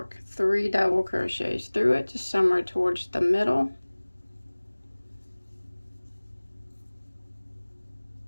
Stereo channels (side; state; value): both; inverted; correlation -1.00